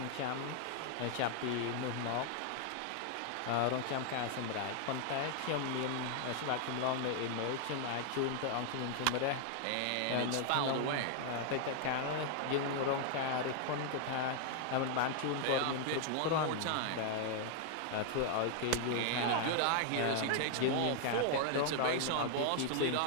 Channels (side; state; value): both; different; correlation 0.00